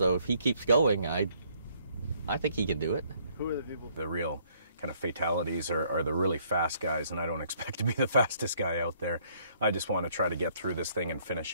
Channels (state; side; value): inverted; both; correlation -0.66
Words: if he keeps going, I think he can do it. Who are the people? The real kind of fatalities are the really fast guys, and I don't expect to be the fastest guy out there. I just want to try to get through this thing and